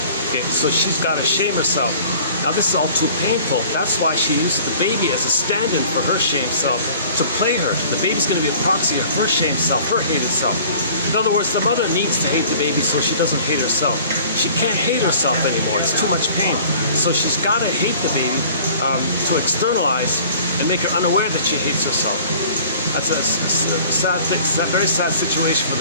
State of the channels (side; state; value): both; inverted; correlation -0.49